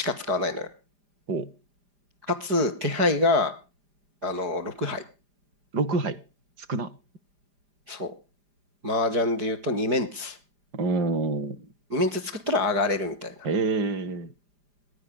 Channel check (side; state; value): left; late; 5.0 ms